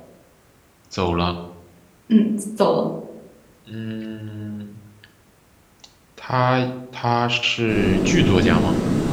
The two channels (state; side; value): identical; both; correlation 1.00